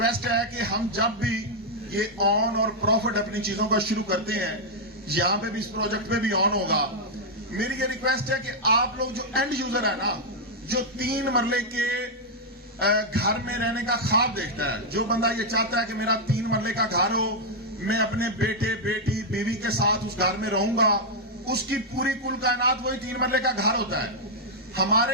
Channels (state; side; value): normal; both; correlation -0.03